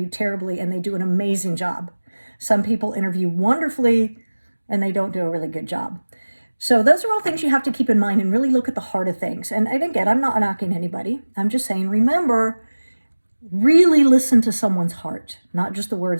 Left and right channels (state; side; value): inverted; both; correlation -1.00